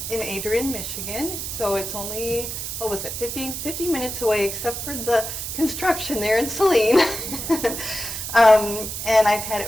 in Adrian, Michigan, so it's only, 50 minutes away, except for the construction there in Saline. And I've had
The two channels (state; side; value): noise; right; hiss, 5 dB below the sound